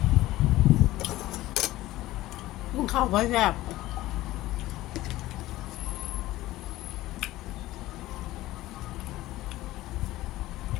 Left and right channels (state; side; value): quieter; right; 16.7 dB